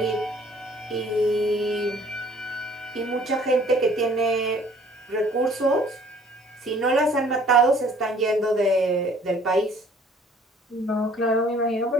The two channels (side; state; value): both; normal; correlation 0.56